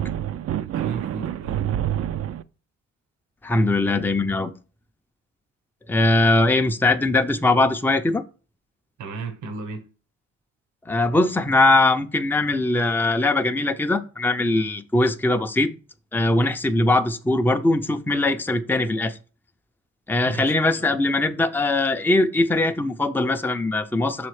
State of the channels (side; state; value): both; normal; correlation 0.70